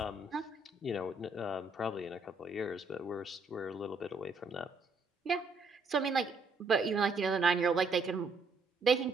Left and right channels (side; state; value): left; quieter; 3.5 dB